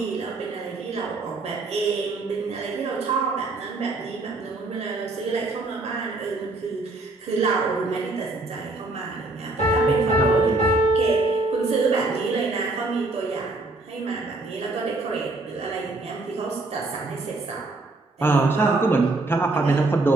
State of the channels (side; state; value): left; quieter; 3.1 dB